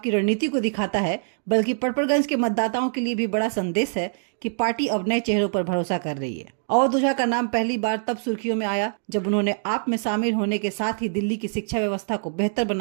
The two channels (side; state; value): left; silent; digital silence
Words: रणनीति को दिखाता है, बल्कि पटपड़गंज के मतदाताओं के लिए भी बड़ा संदेश है कि पार्टी अब नए चेहरों पर भरोसा कर रही है। अवध ओझा का नाम पहली बार तब सुर्खियों में आया जब उन्होंने आप में शामिल होने के साथ ही दिल्ली की शिक्षा व्यवस्था को बेहतर